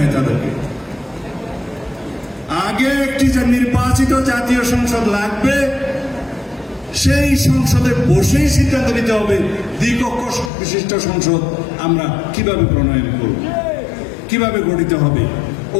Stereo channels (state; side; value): drops out; right; at 10.5 s